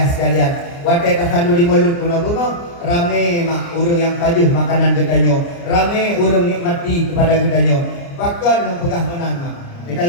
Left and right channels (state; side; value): late; right; 29 ms